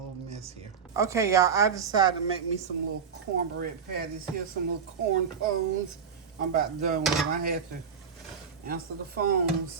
mess here. Okay, y'all, I decided to make me some little cornbread patties. Here's some little corn pones. I'm about done with them. I had to answer the phone,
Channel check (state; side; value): quieter; left; 6.5 dB